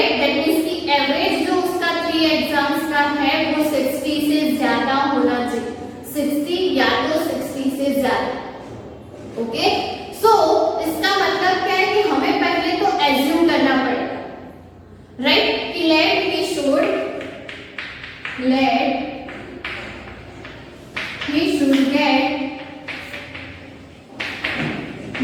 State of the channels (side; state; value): both; identical; correlation 1.00